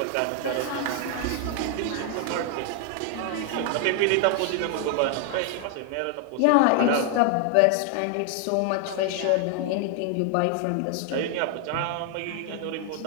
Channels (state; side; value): different; both; correlation 0.00